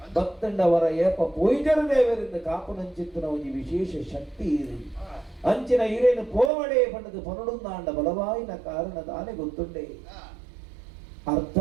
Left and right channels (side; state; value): left; drops out; at 6.5 s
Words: ಭಕ್ತಂಡವರ ಏಪ ಪೊಯ್ಜರು ದೇವರಿಂದ ಕಾಪುನಂಚಿತ್ತಿನ ಒಂದು ವಿಶೇಷ ಶಕ್ತಿ ಇರಿ ಅಂಚಿನ ಇರೇನು ಪೋವಡೆ ಪಂಡದು ಪನುಡುಂದಾಂಡ ಬಲವಾಯಿನ ಕಾರಣ ದಾನೆ ಗೊತ್ತುಂಡೆ